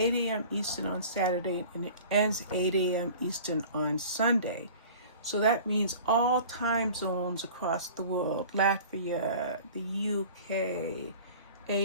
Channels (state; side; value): inverted; both; correlation -0.43